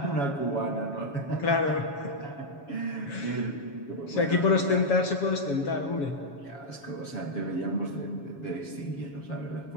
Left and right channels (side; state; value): right; late; 7.2 ms